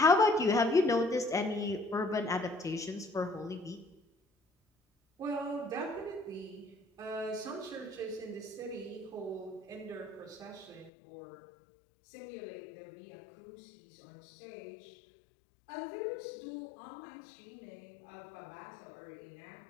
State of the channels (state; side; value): drops out; right; at 10.9 s